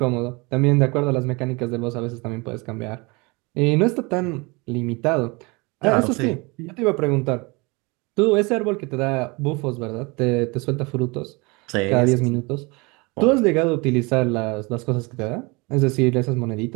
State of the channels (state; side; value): quieter; left; 26.9 dB